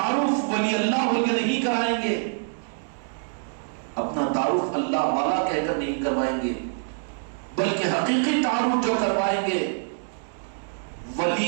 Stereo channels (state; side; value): silent; left; digital silence